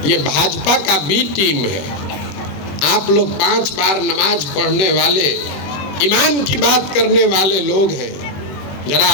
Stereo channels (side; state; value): right; late; 21 ms